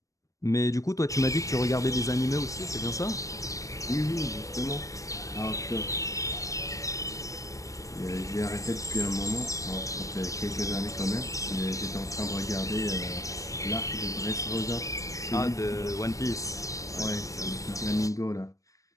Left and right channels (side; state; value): right; late; 0.16 ms